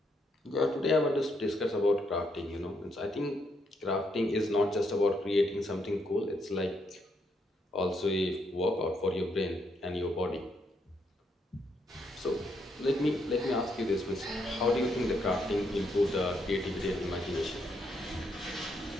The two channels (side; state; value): both; normal; correlation 0.76